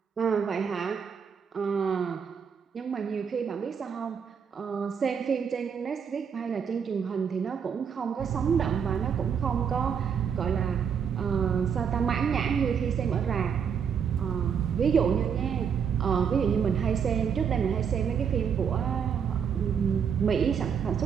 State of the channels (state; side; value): quieter; left; 7.2 dB